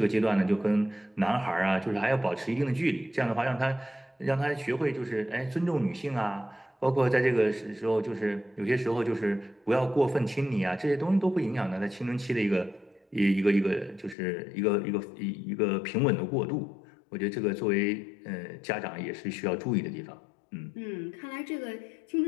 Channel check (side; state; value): right; drops out; at 14.2 s